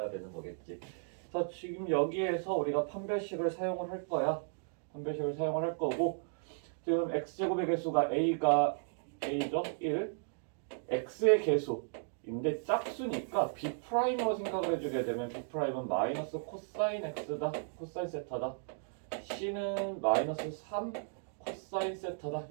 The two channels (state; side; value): silent; left; digital silence